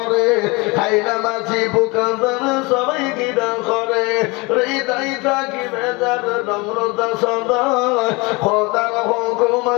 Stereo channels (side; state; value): right; quieter; 26.0 dB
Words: খাই না মাছি পোকা সবাই কিনা করে। হৃদয় থাকি বেজার নম্রতা সদা, খোদার হুকুম